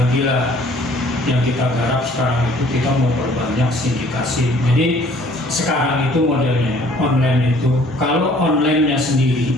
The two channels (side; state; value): both; normal; correlation 0.56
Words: lah. Yang kita garap sekarang itu kita mau perbanyak sindikasi. Jadi sekarang itu modelnya online itu, kalau online-nya sendiri,